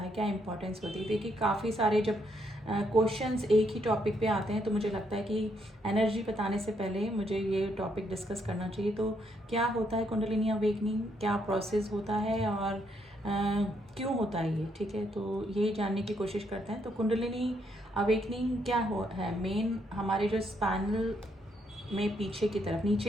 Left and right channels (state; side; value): normal; both; correlation 0.74